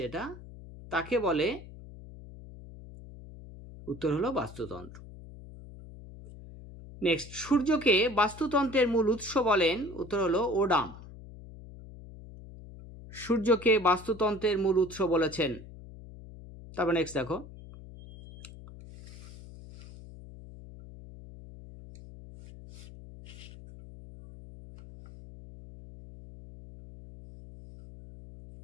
এটা, তাকে বলে, উত্তর হলো বাস্তুতন্ত্র। নেক্সট, সূর্যকে বাস্তুতন্ত্রের মূল উৎস বলেন, উত্তর হলো ওডাম। সূর্যকে বাস্তুতন্ত্রের মূল উৎস বলেছেন। তারপর নেক্সট দেখো,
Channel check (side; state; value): left; noise; hum, 16 dB below the sound